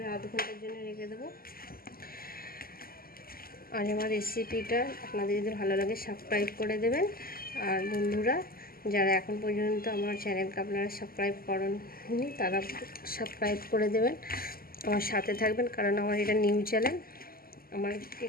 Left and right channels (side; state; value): right; late; 0.43 ms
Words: আধ ঘন্টার জন্য রেখে দেবো। আর আমার রেসিপিটা আপনাদের যদি ভালো লাগে সাবস্ক্রাইব করে দেবেন। আর বন্ধুরা, যারা এখন পর্যন্ত আমার চ্যানেলকে আপনারা সাবস্ক্রাইব করেননি তারা সাবস্ক্রাইব করে দেবেন, আমার সাথে থাকবেন, কারণ আমার এটা নিউ চ্যানেল। আমার